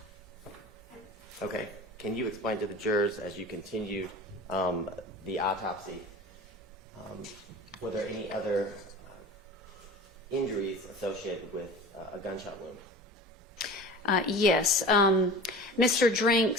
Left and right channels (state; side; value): normal; both; correlation 0.37